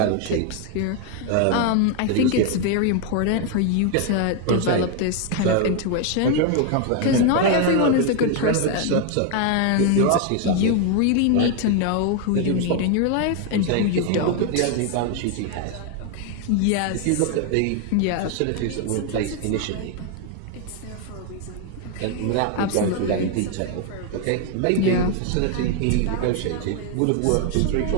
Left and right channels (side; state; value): both; different; correlation 0.01